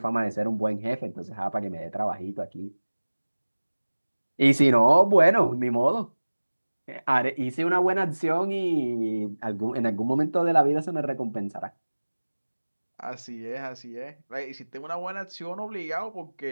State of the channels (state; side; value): inverted; both; correlation -1.00